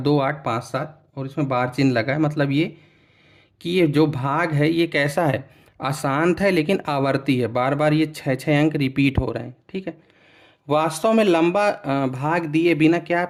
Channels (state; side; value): identical; both; correlation 1.00